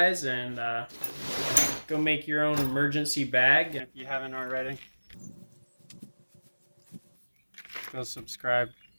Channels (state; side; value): inverted; both; correlation -1.00